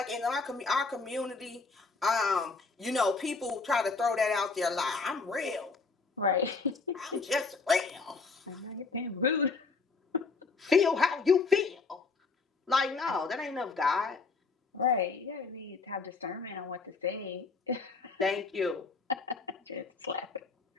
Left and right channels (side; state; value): right; quieter; 4.3 dB